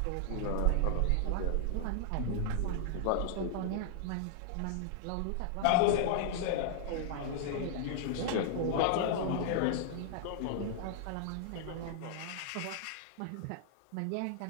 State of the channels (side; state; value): both; different; correlation -0.01